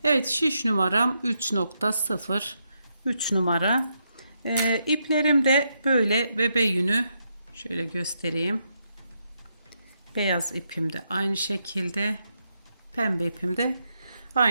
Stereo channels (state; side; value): inverted; both; correlation -0.80